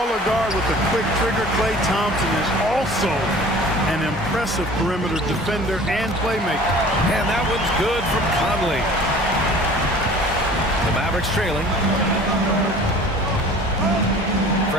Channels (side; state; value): both; normal; correlation 0.46